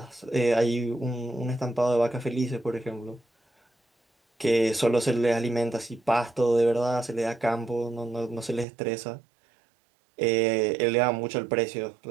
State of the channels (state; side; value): drops out; left; at 8.7 s